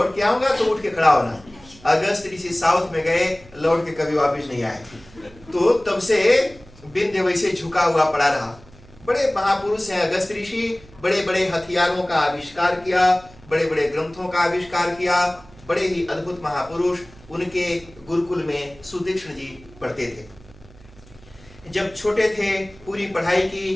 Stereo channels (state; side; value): noise; right; hum, 23 dB below the sound